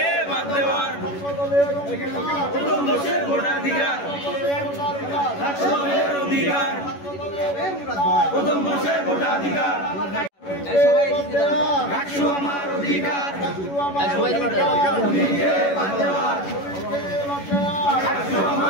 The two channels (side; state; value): right; late; 11 ms